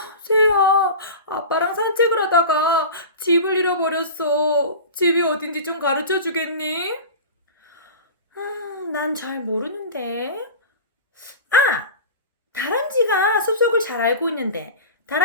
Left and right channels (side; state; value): both; inverted; correlation -0.32